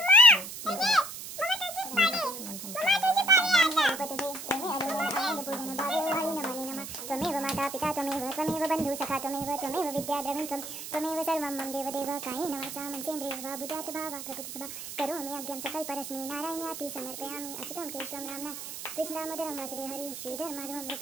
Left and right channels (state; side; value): noise; right; hiss, 9 dB below the sound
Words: त्वमेव माता पिता त्वमेव बंधु सखा त्वमेव विद्या द्रविणं त्वमेव सर्वं मम देवदेव कायेन वाचा मनसेन्द्रियैर्वा वा बुद्ध्यात् भावा प्रकृतिसभा करोमि यज्ञं सकलपरस्मै नारायणाति समर्पयामि अच्युतं केशवं रामना कृष्णदामोदरं वासुदेव हरि श्रीधर माधवं